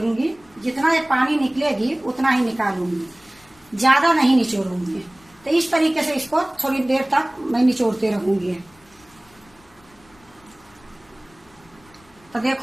जितना ये पानी निकलेगी उतना ही निकालूंगी, ज्यादा नहीं निचोड़ूंगी। तो इस तरीके से इसको थोड़ी देर तक मैं निचोड़ते रहूंगी। तो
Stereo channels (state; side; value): noise; left; rumble, 29 dB below the sound